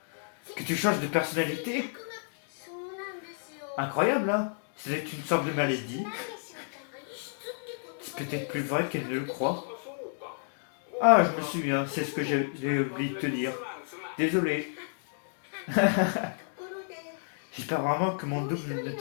Que tu changes de personnalité? Incroyable, hein? C'est une sorte de maladie. C'est peut-être plus vrai qu'elle ne le croit. Ah, je me souviens, c'est ce que j'ai oublié de te dire. Désolé. J'espère vraiment que mon double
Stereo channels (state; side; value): silent; right; digital silence